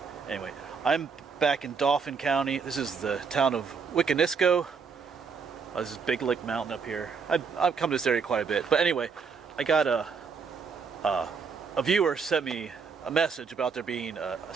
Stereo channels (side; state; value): left; quieter; 5.6 dB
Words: Anyway, I'm back in Dauphin County. This is the town of Wiconisco. This is Big Lick Mountain up here. I've come to this area quite a bit. But anyway, I got a viewer sent me a message about there being a